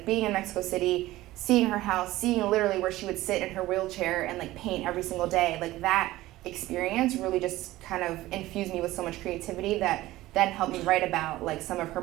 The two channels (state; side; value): quieter; left; 17.0 dB